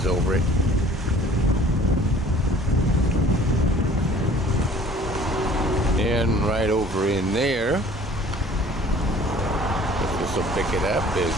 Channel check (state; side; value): normal; both; correlation 0.52